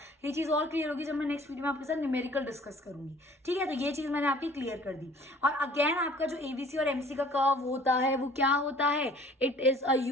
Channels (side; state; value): both; normal; correlation 0.52